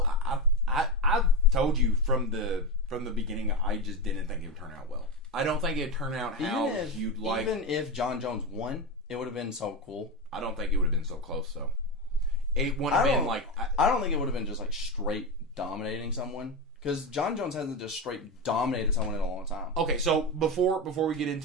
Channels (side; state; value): both; normal; correlation 0.16